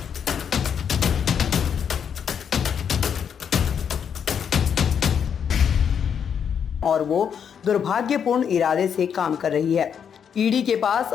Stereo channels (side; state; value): right; quieter; 7.7 dB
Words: और वो दुर्भाग्यपूर्ण इरादे से काम कर रही है। ईडी के पास